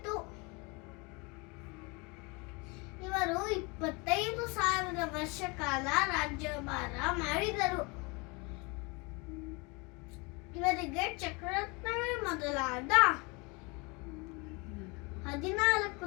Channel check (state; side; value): quieter; right; 28.3 dB